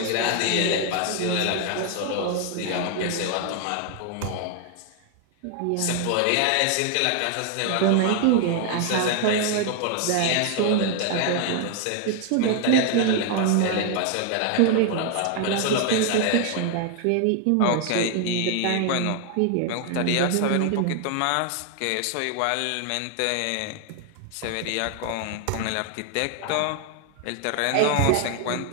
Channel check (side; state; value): both; different; correlation 0.00